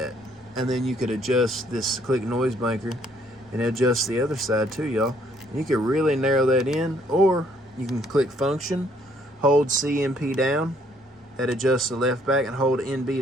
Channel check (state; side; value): normal; both; correlation 0.65